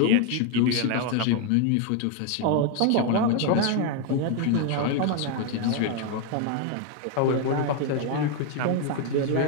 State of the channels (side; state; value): both; different; correlation 0.01